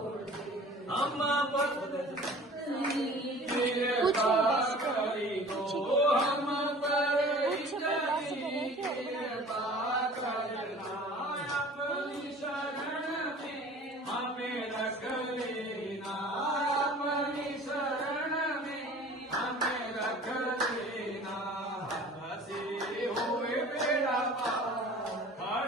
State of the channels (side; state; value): both; normal; correlation 0.45